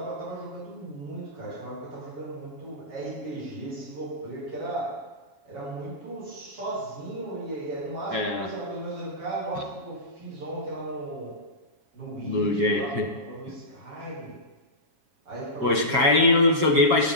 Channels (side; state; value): left; late; 7.3 ms